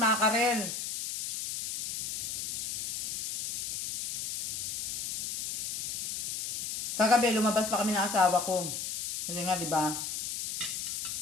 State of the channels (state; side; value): noise; left; hiss, 3 dB below the sound